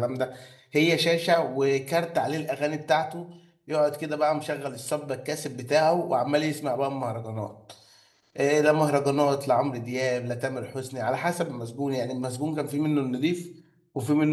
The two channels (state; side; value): identical; both; correlation 1.00